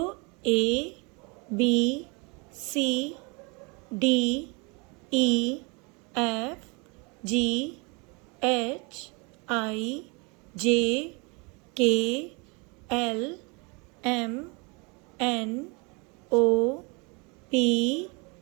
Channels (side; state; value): left; quieter; 30.4 dB